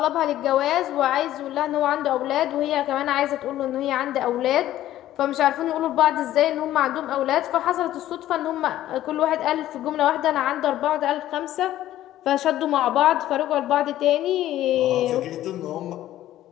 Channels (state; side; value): quieter; right; 13.5 dB